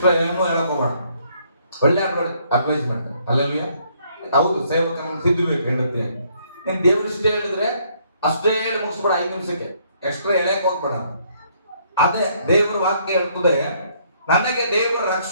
ಏನೋ ಹೇಳಕೋಬೇಡ. ಒಳ್ಳೆ ಅಡ್ವೈಸ್ ಮಾಡ್ತಾರೆ. ಅಲ್ಲೆಲ್ಲೂಯ್ಯ. ಹೌದು, ಸೇವಕನ ತಿದ್ದಬೇಕು ಹೇಳುತ್ತೆ. ನೀನ್ ದೇವ್ರ ಇಷ್ಟೇ ಹೇಳಿದ್ರೆ ಅಷ್ಟೇ ಹೇಳಿ ಮುಗಿಸ್ಬೇಡ, 5 ನಿಮಿಷಕ್ಕೆ ಎಕ್ಸ್ಟ್ರಾ ಎಳೆಯಕ್ಕೆ ಹೋಗ್ಬೇಡ. ಅದೇ ದೇವ್ರ ವಾಕ್ಯ ಹೇಳ್ತದೆ, ನನಗೆ ದೇವರ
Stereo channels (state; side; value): inverted; both; correlation -0.67